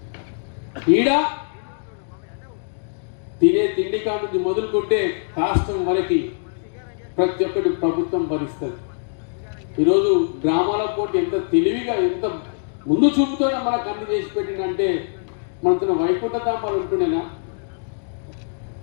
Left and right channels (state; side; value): silent; right; digital silence